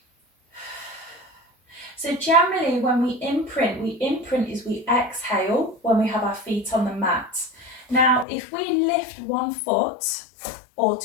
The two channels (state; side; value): drops out; right; at 8.2 s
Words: So generally when we imprint is we exhale when we have our feet on the mat. Now if we lift 1 foot or